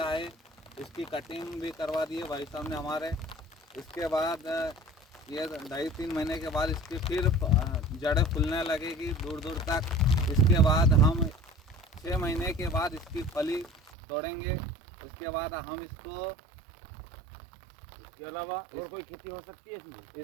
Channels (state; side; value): drops out; left; at 13.9 s